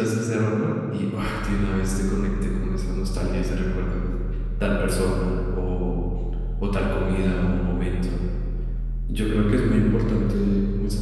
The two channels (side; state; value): both; identical; correlation 1.00